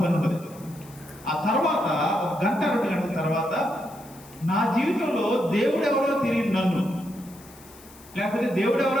పని ఉంటుంది. ఆ తర్వాత 1 గంట 2 గంటల తర్వాత నా జీవితంలో దేవుడు ఎవరో తెలియదు నన్ను, లేకపోతే దేవుడు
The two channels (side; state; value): left; noise; hiss, 22 dB below the sound